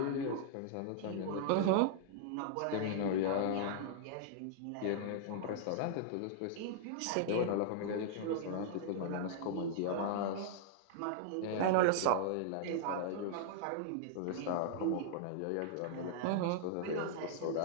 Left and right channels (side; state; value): both; different; correlation -0.01